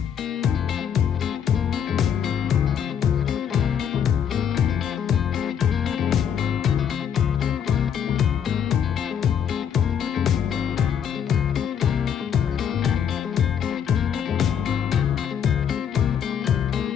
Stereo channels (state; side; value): quieter; right; 8.3 dB